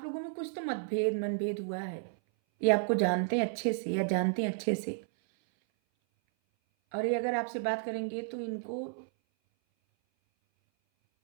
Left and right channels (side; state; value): left; silent; 56 dB below the other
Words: लोगों में कुछ तो मनभेद हुआ है। ये आपको जानते हैं अच्छे से या जानते हैं अच्छे से, और ये अगर आपसे बात करेंगे तो इनको